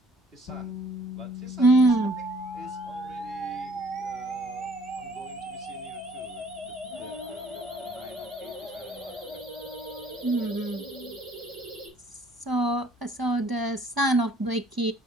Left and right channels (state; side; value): normal; both; correlation 0.58